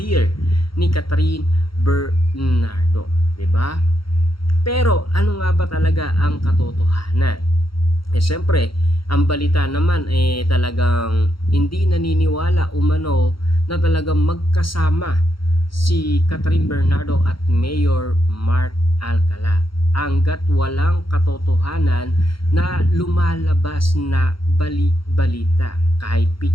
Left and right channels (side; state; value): right; late; 0.74 ms